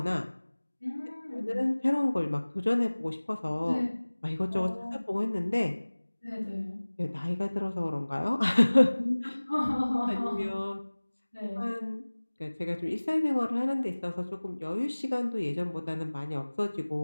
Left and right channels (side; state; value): both; inverted; correlation -1.00